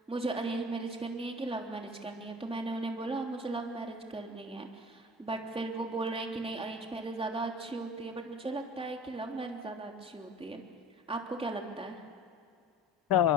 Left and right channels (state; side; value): normal; both; correlation 0.41